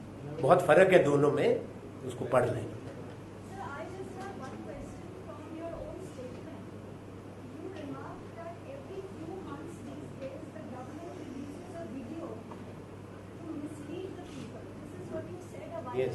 बहुत फर्क है दोनों में, उसको पढ़ लें। Yes.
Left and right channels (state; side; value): identical; both; correlation 1.00